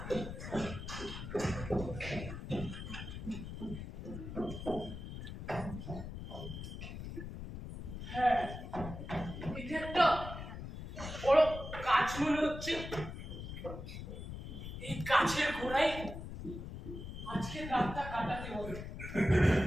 হচ্ছে এই গাছের গোড়ায় আজকে রাতটা কাটাতে হবে।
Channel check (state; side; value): noise; left; rumble, 8 dB below the sound